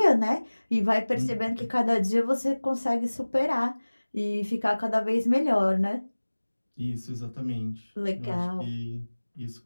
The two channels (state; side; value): inverted; both; correlation -1.00